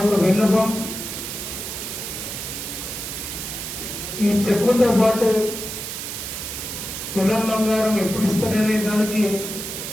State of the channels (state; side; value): noise; right; hiss, 6 dB below the sound